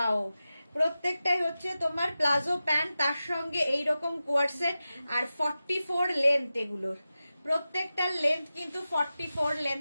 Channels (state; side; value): inverted; both; correlation -0.93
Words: প্রত্যেকটাই হচ্ছে তোমার প্লাজো প্যান্ট, তার সঙ্গে এইরকম কোয়ার্ট সেট। আর 44 লেন্থ এগুলোর, প্রত্যেকটার লেন্থ কিন্তু 44